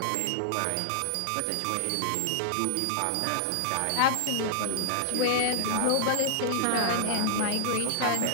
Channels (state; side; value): different; both; correlation -0.01